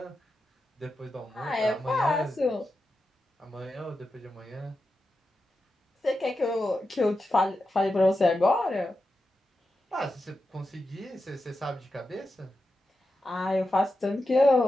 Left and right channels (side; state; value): both; normal; correlation 0.90